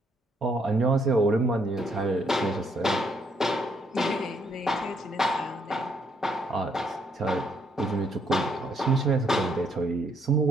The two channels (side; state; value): both; normal; correlation 0.71